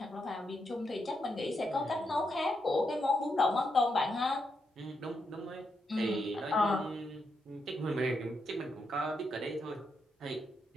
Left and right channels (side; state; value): both; normal; correlation 0.82